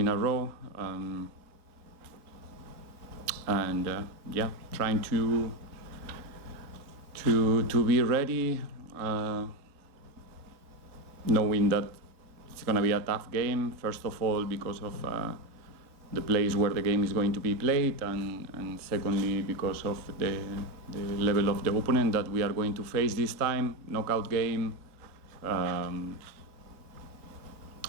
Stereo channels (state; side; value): late; left; 3.7 ms